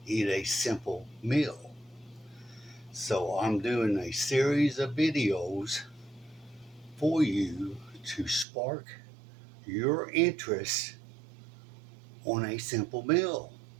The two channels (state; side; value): drops out; left; at 8.5 s